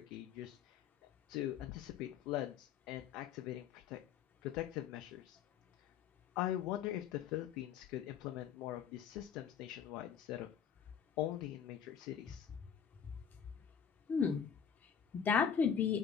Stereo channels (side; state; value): right; quieter; 8.0 dB